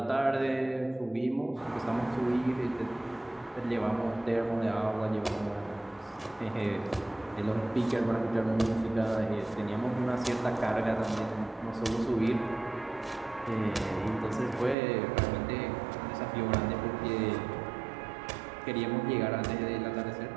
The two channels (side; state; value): left; drops out; at 14.8 s